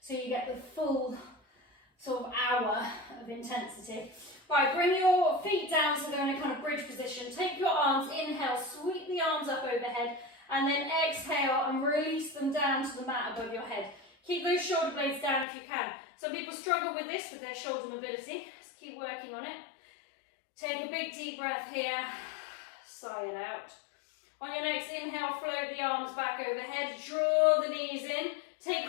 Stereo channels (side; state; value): right; drops out; at 15.5 s